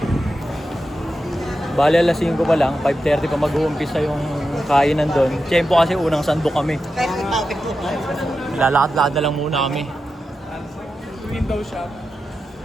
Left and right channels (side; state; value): both; normal; correlation 0.90